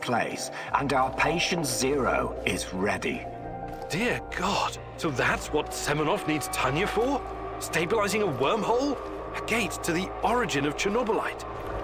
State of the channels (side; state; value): both; identical; correlation 1.00